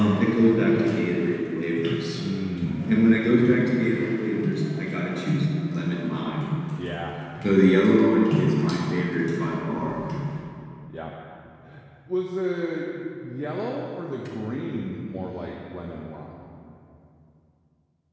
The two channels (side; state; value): both; identical; correlation 1.00